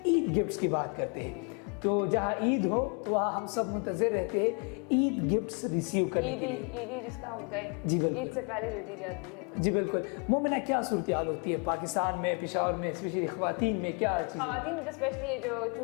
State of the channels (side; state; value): right; quieter; 36.2 dB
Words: ईद गिफ्ट्स की बात करते हैं। तो जहाँ ईद हो वहाँ हम सब मुंतज़िर रहते हैं ईद गिफ्ट्स रिसीव करने के लिए। ईद जिसका हम कहें जी बिल्कुल, ईद से पहले जो दी जाती है। जी बिल्कुल। मोमिना, क्या सूरत हाल होती है पाकिस्तान में, पेशावर में, स्पेशली ख़वातीन में क्या चीज़? ख़वातीन में तो स्पेशली ये जो